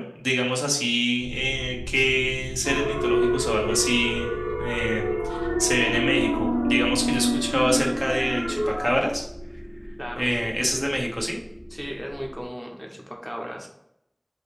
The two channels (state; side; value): identical; both; correlation 1.00